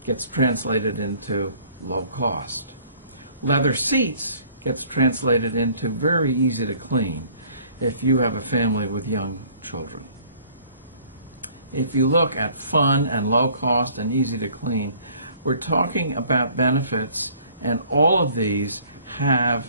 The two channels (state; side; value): inverted; both; correlation -0.56